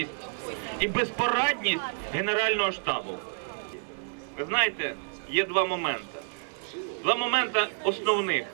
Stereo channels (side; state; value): left; silent; digital silence